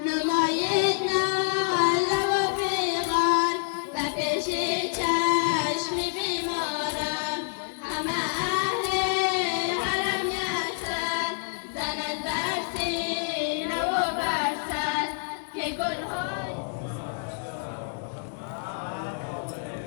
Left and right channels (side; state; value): right; silent; digital silence